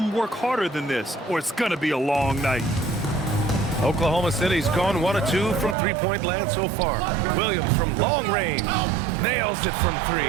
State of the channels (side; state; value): left; drops out; at 5.8 s